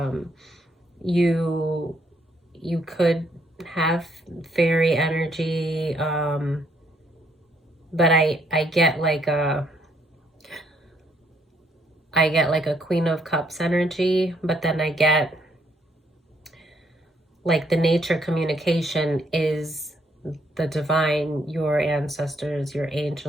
You could have fairy energy, but I get like a Queen of Cups energy, but then I get like the nature communication is the divine, your ancestors, your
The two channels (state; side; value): normal; both; correlation 0.70